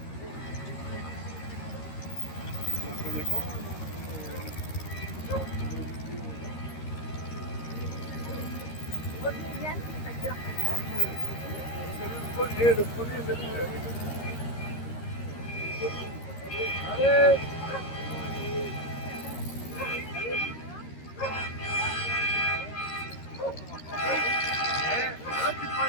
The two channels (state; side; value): late; right; 13 ms